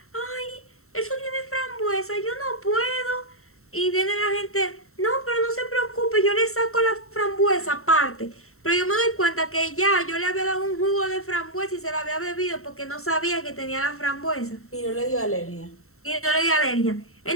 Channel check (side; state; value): right; late; 0.63 ms